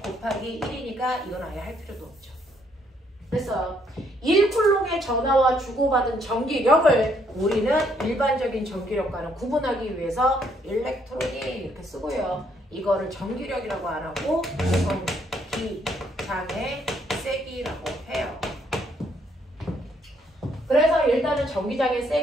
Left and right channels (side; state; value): both; normal; correlation 0.70